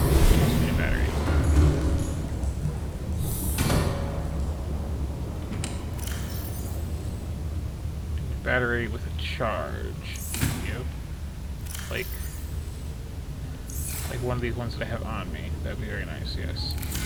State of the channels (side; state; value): both; identical; correlation 1.00